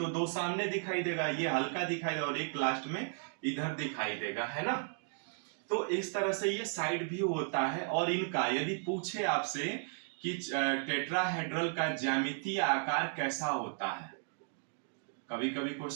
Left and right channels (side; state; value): left; silent; 54 dB below the other